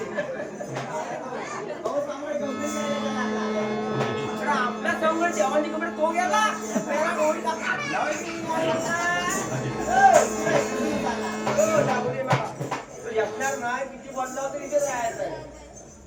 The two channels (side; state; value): both; identical; correlation 1.00